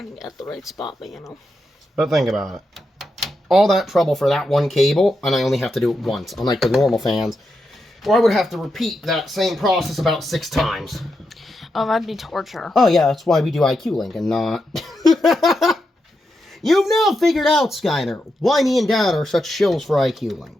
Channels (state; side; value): normal; both; correlation 0.86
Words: at the right spot, but you know. But think about it. All that trouble for that one cable, and I only have to do it once, unlike the normal fans, where I would have to repeat that same process about 6 times. Oh, that'd be torture. Oh yeah, that's why we do ICUE Link and not... You've now figured out, Skyner, why me and Dad are such shills for ICUE